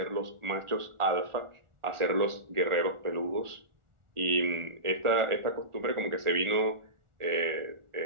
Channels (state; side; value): late; left; 1.4 ms